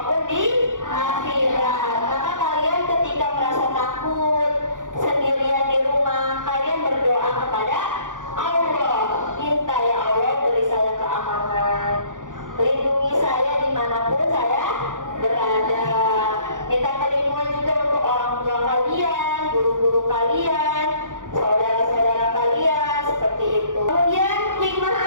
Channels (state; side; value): late; left; 0.88 ms